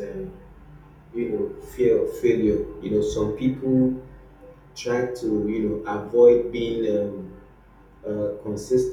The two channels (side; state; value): both; identical; correlation 1.00